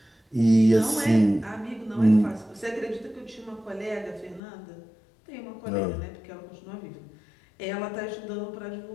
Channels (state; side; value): drops out; right; at 4.4 s